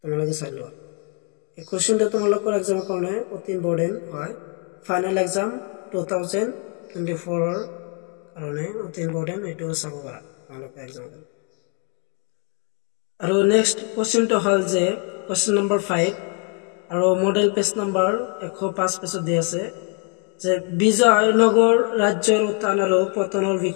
তোমালোকে চাই লোৱা। এই কোৱেশ্চনটো তোমালোকৰ এক্সামৰ কাৰণে অতি ইম্পৰ্টেন্ট হয়, ফাইনেল এক্সাম 2024 ৰ কাৰণে অতি ইম্পৰ্টেন্ট, এইটো চাব পাৰা তোমালোকে এক্সামৰ কাৰণে। আৰু নেক্সট কোৱেশ্চনটো হল যে কোৱেশ্চন নম্বৰ 5 আৰু মডেল পেজ নম্বৰ 105 পেজত দিয়া আছে যে বিজয়নগৰ ৰাজ্যৰ উত্থান আৰু পতনৰ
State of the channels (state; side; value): quieter; right; 34.6 dB